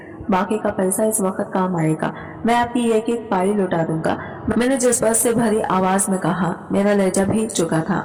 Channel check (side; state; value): both; identical; correlation 1.00